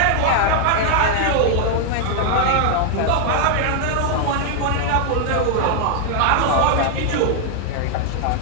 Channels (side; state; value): both; different; correlation -0.01